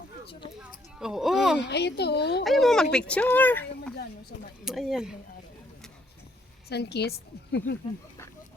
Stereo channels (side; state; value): both; normal; correlation 0.68